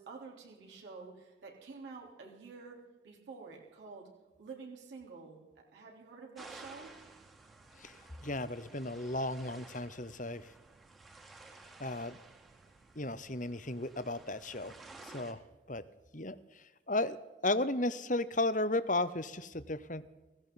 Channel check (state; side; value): normal; both; correlation 0.03